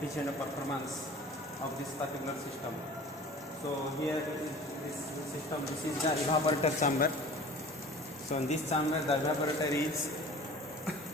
of performance of this particular system. So here is this system, this is the evaporator chamber. So in this chamber the evaporator is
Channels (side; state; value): both; normal; correlation 0.43